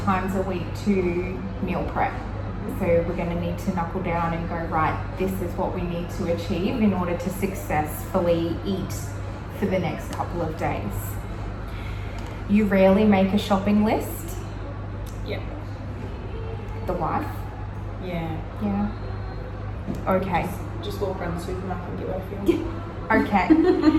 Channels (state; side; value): identical; both; correlation 1.00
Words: a week to meal prep. So we're going to need to knuckle down and go, right, this is what we need to achieve in order to successfully eat for the next couple of days. You rarely make a shopping list. Yeah. The wife? Yeah. Yeah. Okay. Just walk around the supermarket and get what I feel. Okay.